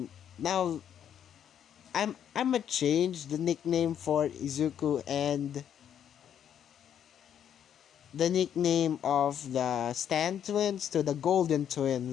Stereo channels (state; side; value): quieter; right; 9.3 dB